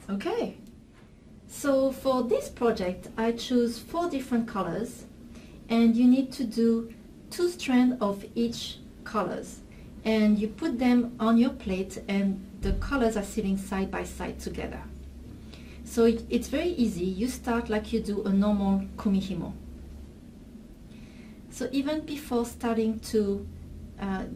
Okay. So for this project, I choose 4 different colors, and you need to do 2 strands of each colors. And you put them on your plate, and the colors are sitting side by side together. So it's very easy. You start like you do a normal Kumihimo. So even before starting to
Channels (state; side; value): identical; both; correlation 1.00